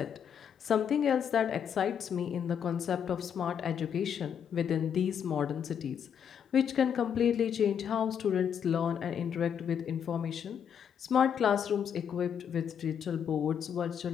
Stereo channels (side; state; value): right; quieter; 8.1 dB